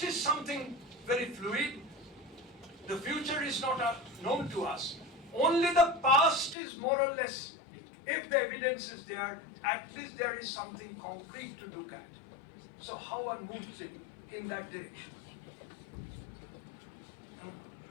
is something very fluid, the future is not known to us. Only the past is more or less, if the evidence is there, at least there is something concrete to look at. So how one moves it in that direction?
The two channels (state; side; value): drops out; right; at 6.6 s